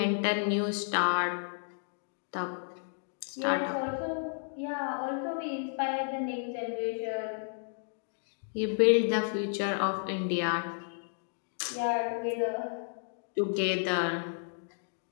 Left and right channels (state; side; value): silent; right; digital silence